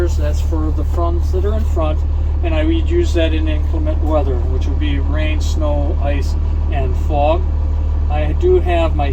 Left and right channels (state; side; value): identical; both; correlation 1.00